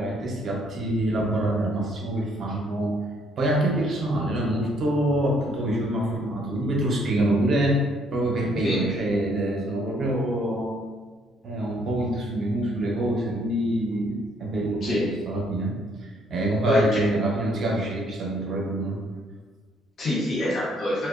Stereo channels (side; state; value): both; normal; correlation 0.67